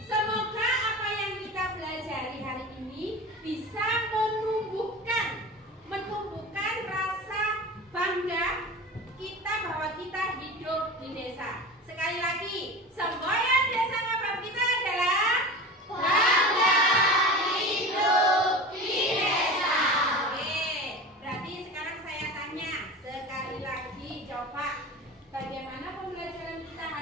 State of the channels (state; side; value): normal; both; correlation 0.32